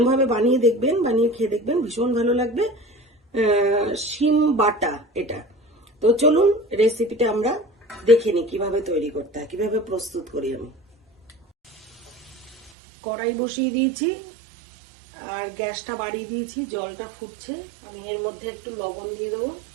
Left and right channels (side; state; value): left; drops out; at 12.7 s